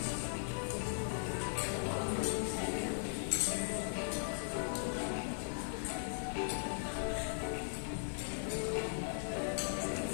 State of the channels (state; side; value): silent; right; 52 dB below the other